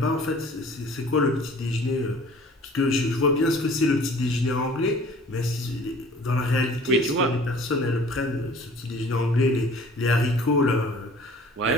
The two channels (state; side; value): normal; both; correlation 0.49